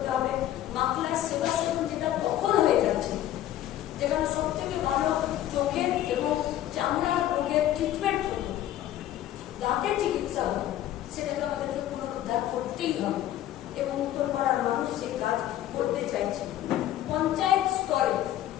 সেটাকে আমাদেরকে পুনরুদ্ধার করতেই হবে এবং উত্তরপাড়ার মানুষ সেই কাজ করতে চাইছে। পঞ্চায়েত স্তরে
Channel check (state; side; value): quieter; right; 12.7 dB